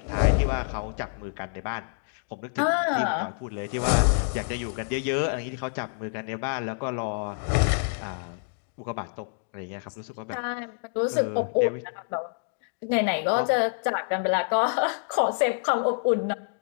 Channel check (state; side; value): silent; right; digital silence